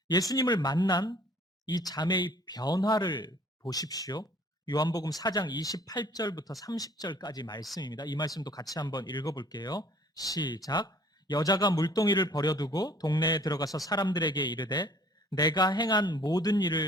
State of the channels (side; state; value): both; normal; correlation 0.55